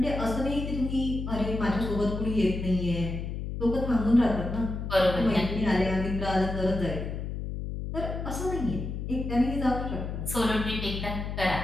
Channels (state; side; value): noise; left; hum, 5 dB below the sound